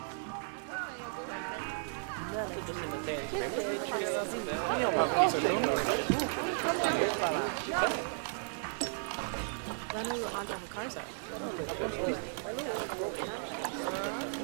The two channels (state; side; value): silent; left; digital silence